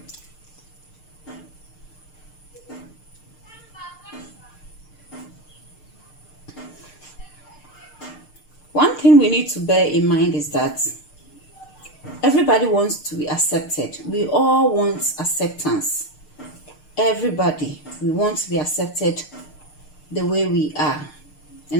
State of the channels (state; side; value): late; right; 6.6 ms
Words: One thing we need to bear in mind is that everybody wants to be accepted. We all want acceptance. Everybody, we want to be accepted the way we are,